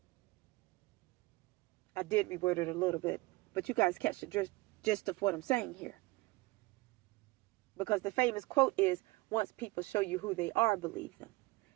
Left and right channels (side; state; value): left; quieter; 22.0 dB